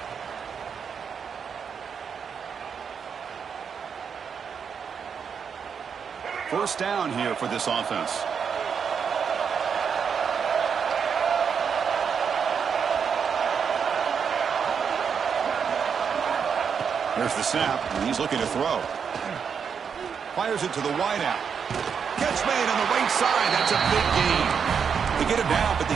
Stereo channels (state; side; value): quieter; left; 6.7 dB